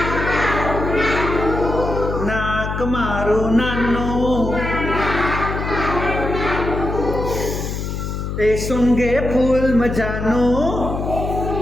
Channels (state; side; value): noise; left; hum, 4 dB below the sound